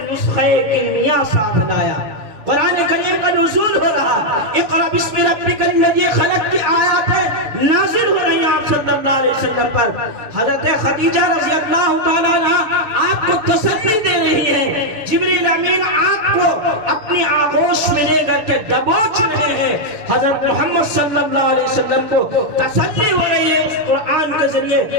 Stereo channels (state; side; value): late; left; 6.9 ms